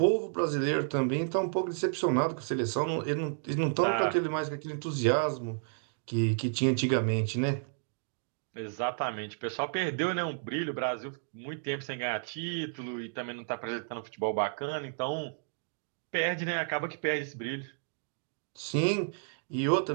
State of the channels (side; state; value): left; silent; digital silence